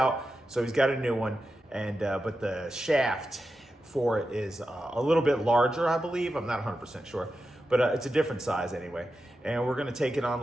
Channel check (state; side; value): normal; both; correlation 0.90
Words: so he's got a new one, and but the shaft for it is a little bit larger, I believe. I'm not 100% sure, but it's a different size anyway. And we're gonna take it on